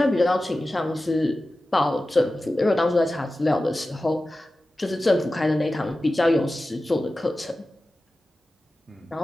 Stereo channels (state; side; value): normal; both; correlation 0.95